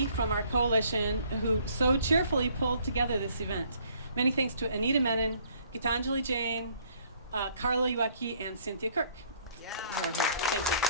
from our coalition who so cheerfully pulled together this event. Many thanks to Anita Menon, Gitanjali Jain, Carla Uecki, and Cynthia Kirk. Yeah. Thank you.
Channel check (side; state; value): both; inverted; correlation -0.61